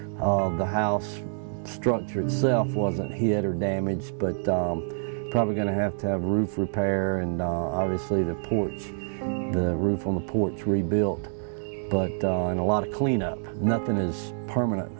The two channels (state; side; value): silent; left; digital silence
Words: the house structure itself wasn't hit or damaged, but probably going to have roof repair, and obviously the roof on the porch rebuilt, but and a lot of cleanup. Nothing is permanent